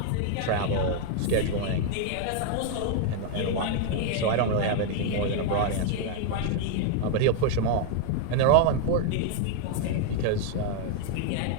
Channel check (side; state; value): both; different; correlation 0.00